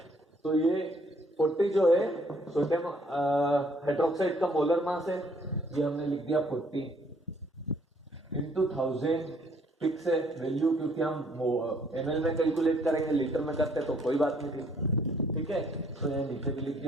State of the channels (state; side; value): normal; both; correlation 0.64